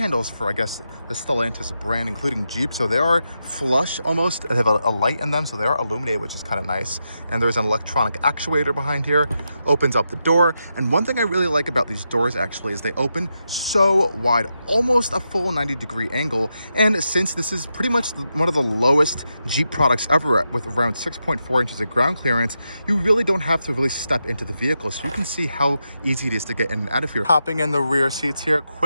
for, I guess, the Stellantis brand, including Jeep. So they are flush almost. They have a light in them, so they are illuminated, which is kind of nice. And there's an electronic actuator behind here. Opens up the door. And one thing I really like about these doors actually is they open so wide, almost a full 90-degree angle. And since this is pretty much one of the lowest Jeep products ever with around 6.4 inches of ground clearance, you really don't have to really step into the vehicle. So you can see how easy it is to get in and out of here. Hopping in the rear seats here,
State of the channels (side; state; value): both; inverted; correlation -0.86